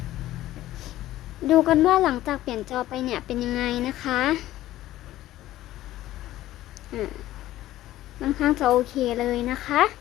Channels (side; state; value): right; quieter; 14.8 dB